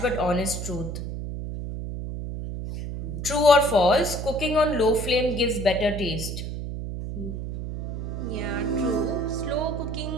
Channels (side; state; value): right; noise; hum, 5 dB below the sound